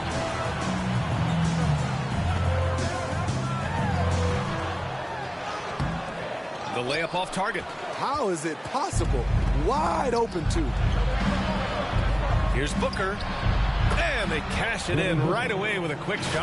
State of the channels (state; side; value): identical; both; correlation 1.00